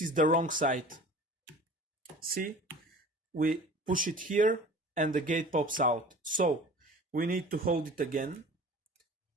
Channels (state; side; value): normal; both; correlation 0.42